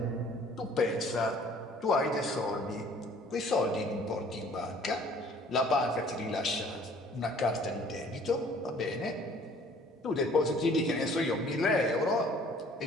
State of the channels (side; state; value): both; normal; correlation 0.54